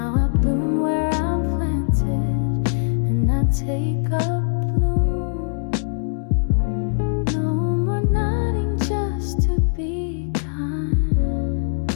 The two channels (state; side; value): silent; right; digital silence